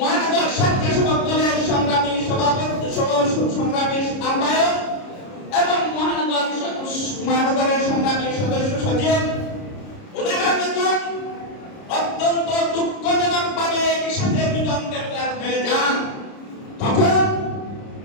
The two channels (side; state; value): right; late; 30 ms